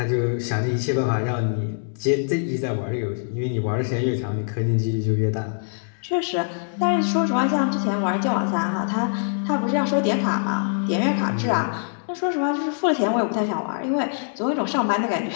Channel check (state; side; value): silent; right; digital silence